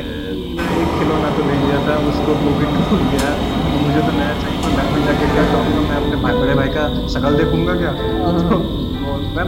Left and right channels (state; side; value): identical; both; correlation 1.00